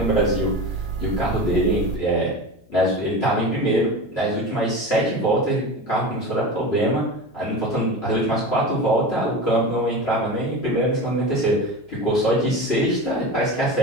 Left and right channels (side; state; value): left; noise; hum, 30 dB below the sound